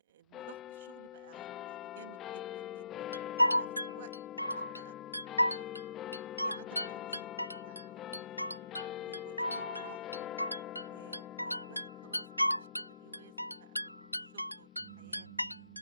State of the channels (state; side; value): inverted; both; correlation -0.76